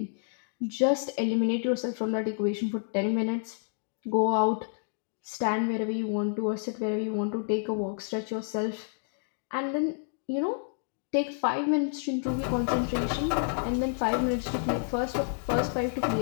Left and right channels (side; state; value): right; silent; digital silence